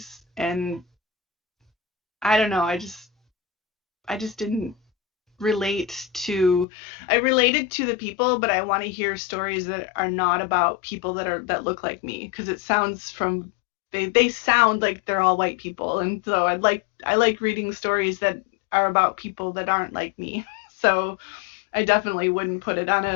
and I don't know. I just didn't relate to. I related to the people, but I want to hear stories that are not about people that look like me, because it sounds from. They sound like they're all white people, and so I like reading stories that are about people that aren't like me. So I definitely wouldn't put it on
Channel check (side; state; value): right; drops out; at 6.7 s